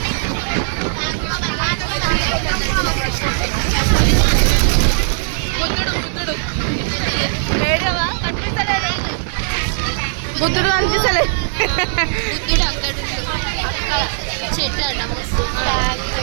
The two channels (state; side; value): silent; left; digital silence